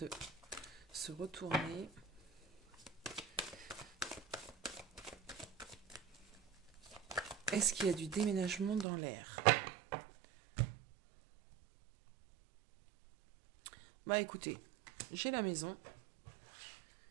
se retourner. Est-ce qu'il y a du déménagement dans l'air? Bah écoutez, j'ai la maison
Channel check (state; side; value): drops out; left; at 8.8 s